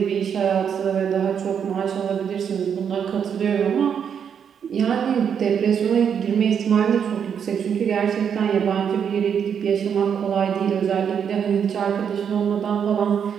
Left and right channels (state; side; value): quieter; left; 7.7 dB